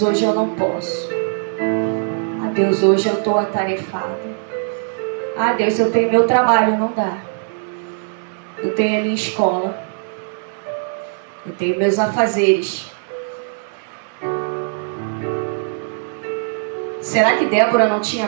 hoje eu não posso. Ah, Deus, hoje eu estou atarefada. Ah, Deus, eu tenho meu trabalho, não dá. Eu tenho a minha escola. Eu tenho meus afazeres. Será que Débora não tinha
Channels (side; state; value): left; silent; digital silence